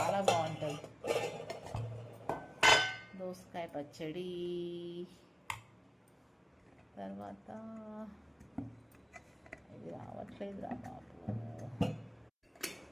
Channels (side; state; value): both; identical; correlation 1.00